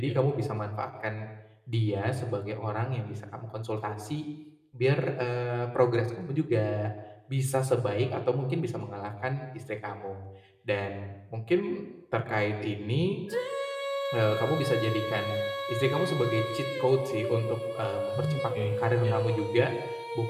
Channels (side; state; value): both; identical; correlation 1.00